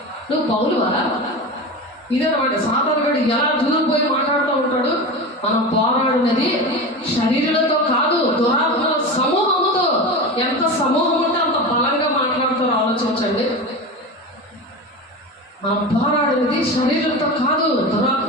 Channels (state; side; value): normal; both; correlation 0.26